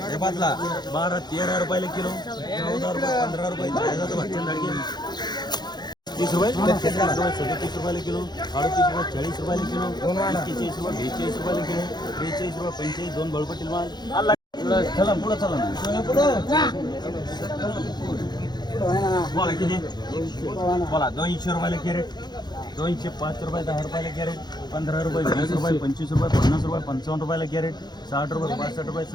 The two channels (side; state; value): right; late; 0.21 ms